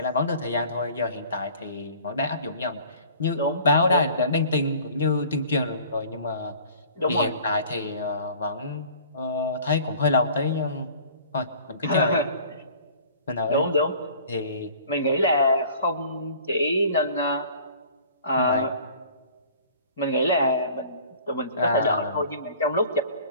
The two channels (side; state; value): both; inverted; correlation -0.48